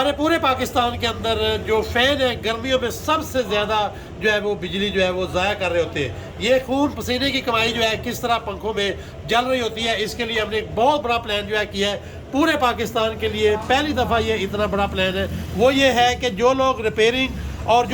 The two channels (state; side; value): identical; both; correlation 1.00